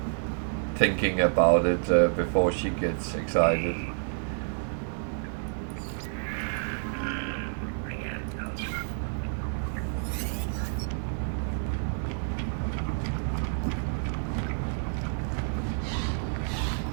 thinking about it before she gets excited.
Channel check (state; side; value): silent; left; digital silence